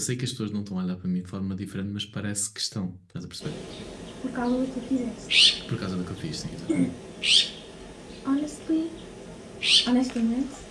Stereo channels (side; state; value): both; identical; correlation 1.00